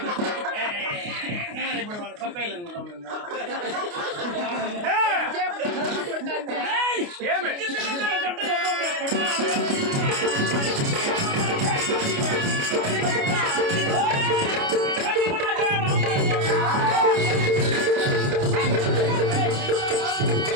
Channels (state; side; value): late; left; 29 ms